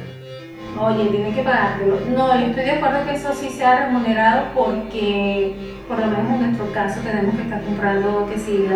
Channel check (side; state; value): both; identical; correlation 1.00